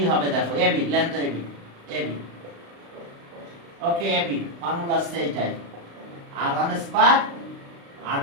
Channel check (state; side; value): late; left; 35 ms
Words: হবে দেখো, এবি লেন্থ এবি ওকে, এবি ফর্মুলা আছে এইটাই, r1 square